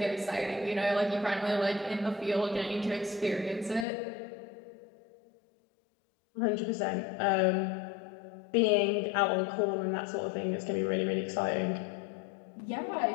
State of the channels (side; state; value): right; drops out; at 3.9 s